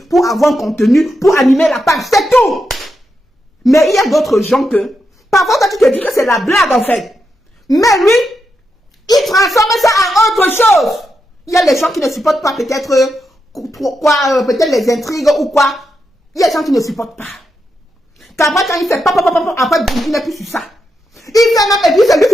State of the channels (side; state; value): both; normal; correlation 0.85